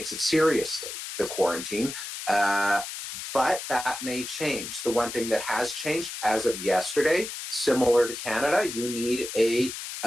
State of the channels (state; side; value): noise; left; hiss, 8 dB below the sound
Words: it seriously, the quarantine. But that may change. The one thing that has changed as of yesterday, similar to Canada, you need a